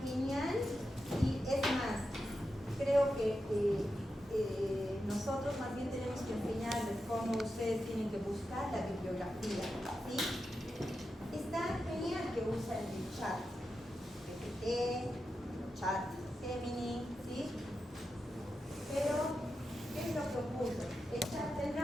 genial y es más, creo que nosotros más bien tenemos que enseñarles cómo ustedes tienen que buscar la bibliografía, ¿sí? Está genial que usen el chat, GPT, chat Gemini, ¿sí? Pero, ¿qué es lo que ocurre? ¿El chat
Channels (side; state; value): both; normal; correlation 0.89